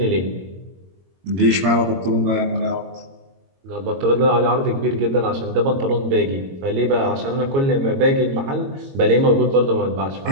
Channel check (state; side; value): late; left; 22 ms